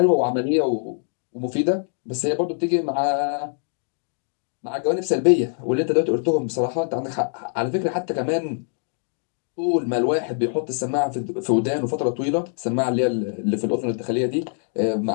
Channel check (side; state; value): right; silent; digital silence